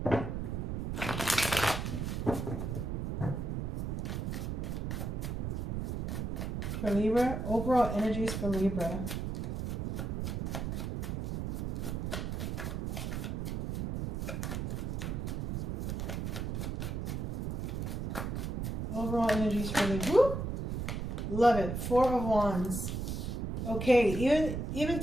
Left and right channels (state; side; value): noise; right; rumble, 3 dB below the sound